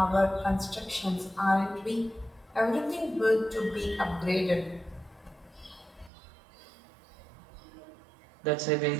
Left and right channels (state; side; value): drops out; left; at 6.1 s